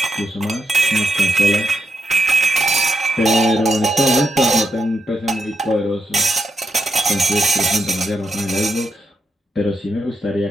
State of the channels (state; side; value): normal; both; correlation 0.82